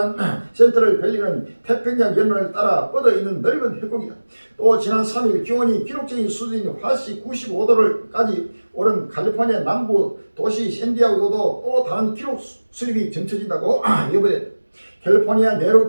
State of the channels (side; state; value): both; inverted; correlation -1.00